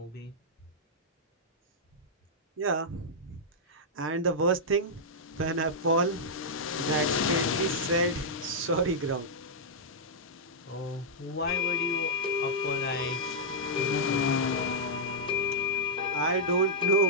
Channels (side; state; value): both; normal; correlation -0.08